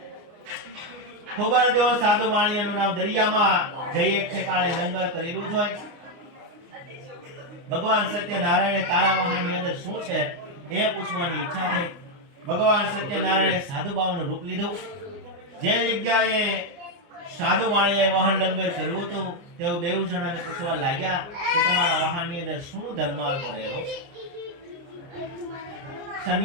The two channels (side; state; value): left; late; 29 ms